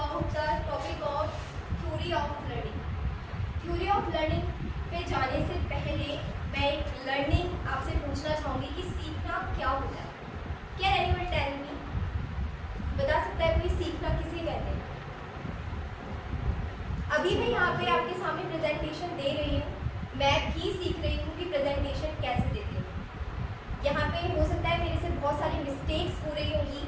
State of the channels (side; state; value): both; identical; correlation 1.00